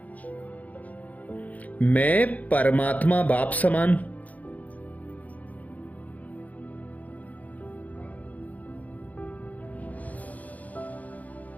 मैं परमात्मा बाप समान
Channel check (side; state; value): right; late; 0.075 ms